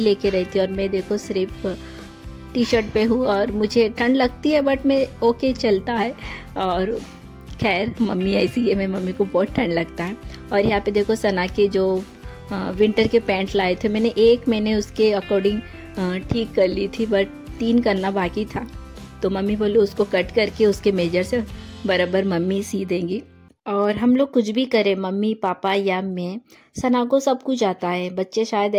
लेके रहती है। और मैं देखो सिर्फ टी शर्ट पे हूँ और मुझे ठंड लगती है, बट मैं ओके चलता है। और खैर मम्मी ऐसी है, मैं मम्मी को बहुत ठंड लगता है। और यहाँ पे देखो सना के जो विंटर के पैंट लाए थे, मैंने उसके अकॉर्डिंग ठीक कर ली थी, बट 3 करना बाकी था। तो मम्मी बोली उसको कट करके उसके मेजर से बराबर मम्मी सी देंगी। और हम लोग कुछ भी करें, मम्मी पापा या मैं, सना को सब कुछ आता है। बच्चे शायद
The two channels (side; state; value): both; identical; correlation 1.00